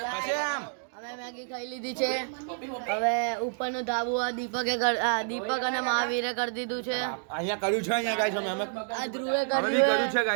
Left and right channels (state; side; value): silent; left; digital silence